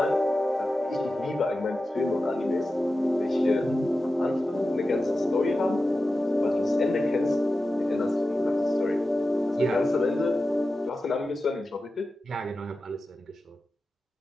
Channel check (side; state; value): both; normal; correlation 0.93